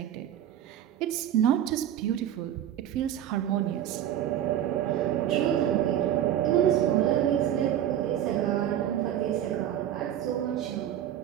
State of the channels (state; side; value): quieter; left; 11.1 dB